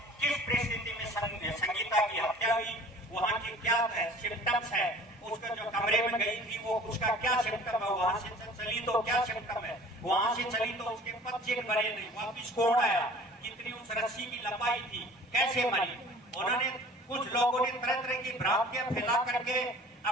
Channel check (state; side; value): normal; both; correlation 0.47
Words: किस परिस्थिति में संगीता की हत्या हुई, वहाँ की क्या सिम्टम्स है, उसका जो कमरे में गई थी वो उसका क्या सिम्टम है, वहां से चली तो क्या सिम्टम है, वहां से चली तो उसके पच्चीस मरे नहीं, वापिस कौन आया, कितनी उस रस्सी की लंबाई थी, कैसे मरी। उन्होंने, कुछ लोगों ने तरह तरह की भ्रांतियां फैला करके